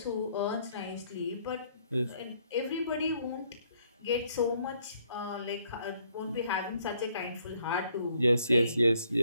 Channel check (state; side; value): inverted; both; correlation -0.68